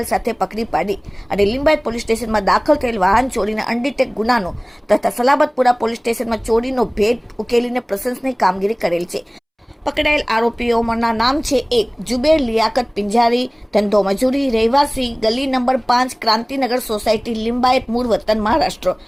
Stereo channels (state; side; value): identical; both; correlation 1.00